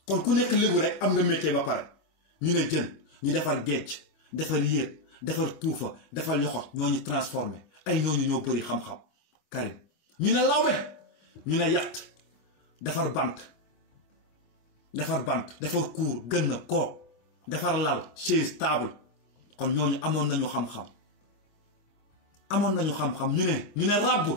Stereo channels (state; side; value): late; right; 25 ms